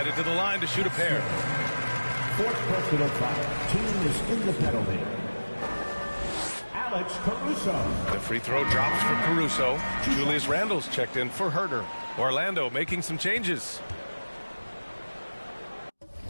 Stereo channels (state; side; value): inverted; both; correlation -1.00